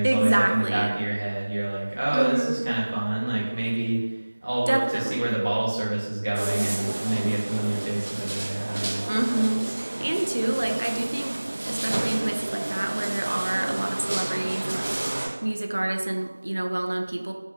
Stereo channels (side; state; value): both; inverted; correlation -1.00